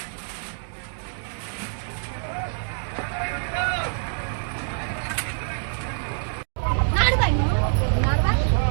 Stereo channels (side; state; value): left; silent; digital silence